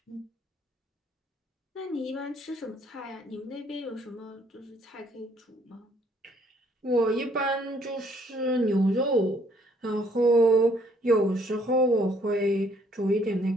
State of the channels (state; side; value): normal; both; correlation 0.64